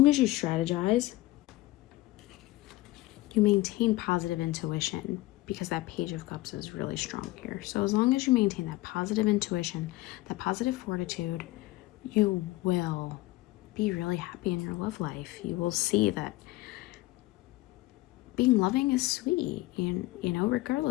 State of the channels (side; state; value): right; quieter; 18.6 dB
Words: as you strategize, you maintain positive intuition, because that Page of Cups is really strong here. So as long as you maintain that positive intuition, that positive fortitude, you will be really happy in your love life. You will see that being loving is sweet, and